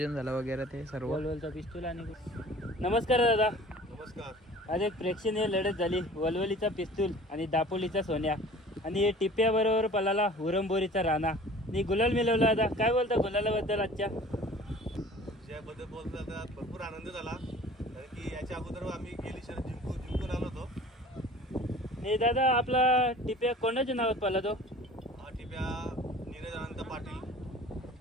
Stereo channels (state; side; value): normal; both; correlation 0.45